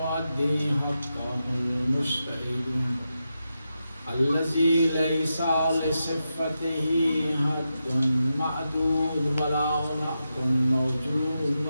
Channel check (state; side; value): inverted; both; correlation -0.88